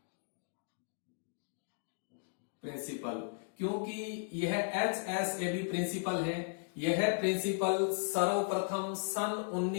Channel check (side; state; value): right; silent; digital silence